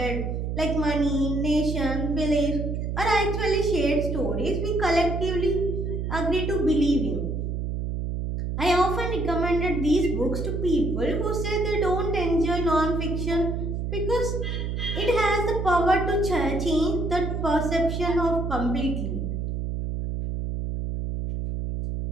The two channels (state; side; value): noise; right; hum, 2 dB below the sound